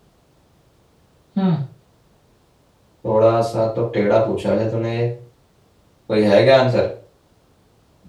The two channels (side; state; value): both; identical; correlation 1.00